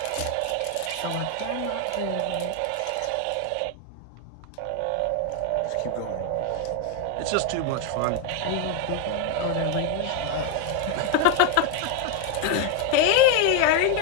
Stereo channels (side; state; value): both; different; correlation 0.01